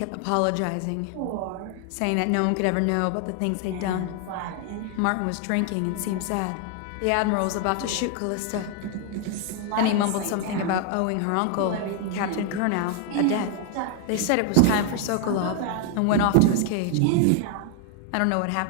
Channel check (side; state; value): both; different; correlation 0.00